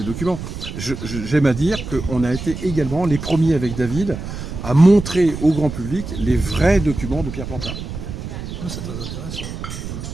documents. J'aime à dire qu'on a été également les premiers avec David à montrer au grand public les vrais documents de Pierre Pontard. C'est très intéressant.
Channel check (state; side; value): noise; right; rumble, 8 dB below the sound